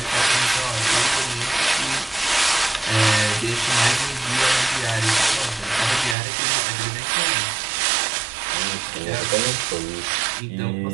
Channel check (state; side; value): drops out; left; at 6.2 s